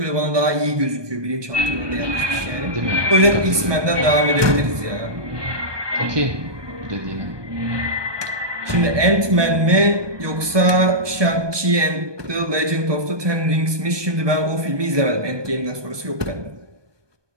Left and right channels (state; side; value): late; left; 1.2 ms